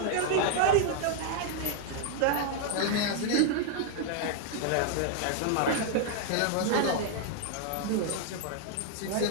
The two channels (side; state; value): both; different; correlation 0.00